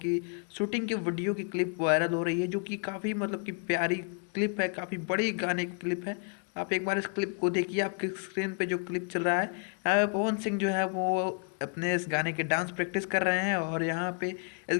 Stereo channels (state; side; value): quieter; right; 39.1 dB